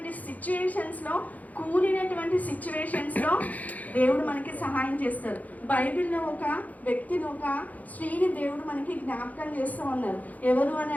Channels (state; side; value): late; right; 0.077 ms